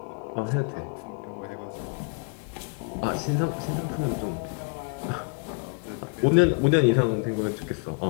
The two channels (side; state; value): right; quieter; 37.1 dB